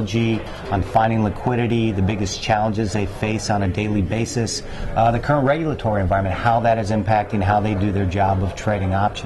on finding liquidity, the biggest challenges they face on a daily basis, the current regulatory environment, how that is impacting how they do their job of trading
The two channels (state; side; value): identical; both; correlation 1.00